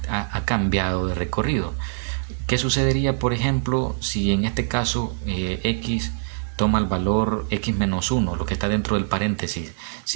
ha cambiado de recorrido. ¿Qué sucedería, por ejemplo, si en este caso x toma el valor x menos 1, lo que está dentro del paréntesis,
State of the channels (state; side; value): silent; left; digital silence